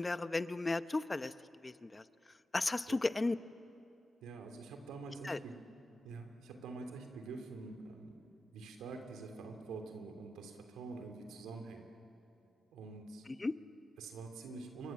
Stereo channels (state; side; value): normal; both; correlation 0.92